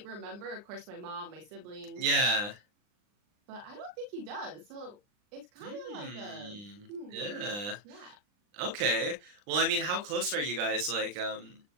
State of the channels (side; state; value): left; late; 39 ms